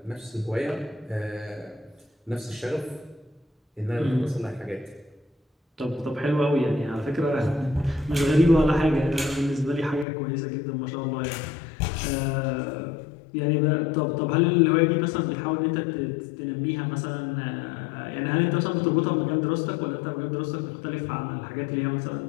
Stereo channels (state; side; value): drops out; right; at 10.1 s